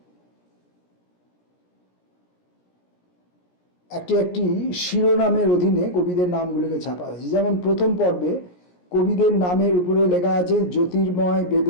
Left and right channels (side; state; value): right; late; 17 ms